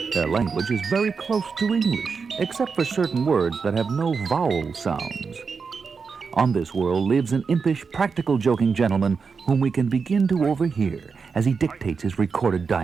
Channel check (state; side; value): quieter; left; 5.3 dB